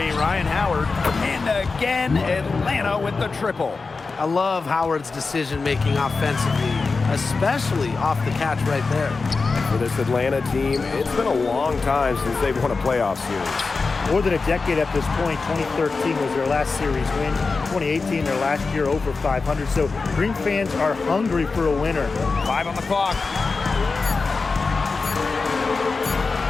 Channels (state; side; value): quieter; right; 4.2 dB